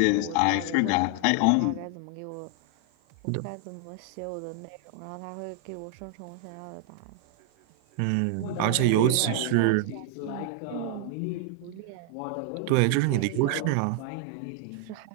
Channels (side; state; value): both; different; correlation 0.00